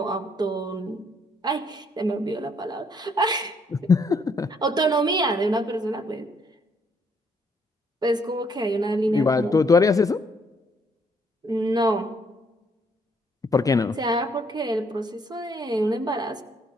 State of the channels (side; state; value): both; normal; correlation 0.69